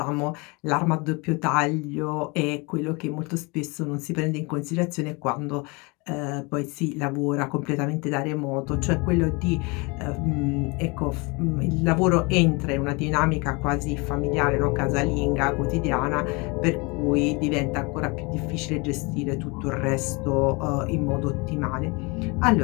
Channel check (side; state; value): right; quieter; 28.2 dB